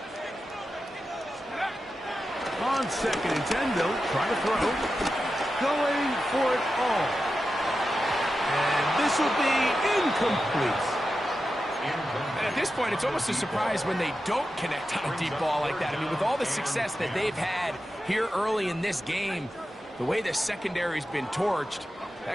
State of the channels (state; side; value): normal; both; correlation 0.91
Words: On 2nd and 10, they'll try to throw. Going for it all. And this will be incomplete. And at this point, it's almost a surprise when they don't connect on a deep ball like that. I mean, with all the success that they've had here early in this game, the way the secondary's been torched,